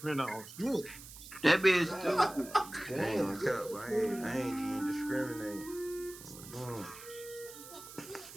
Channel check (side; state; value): right; noise; hiss, 15 dB below the sound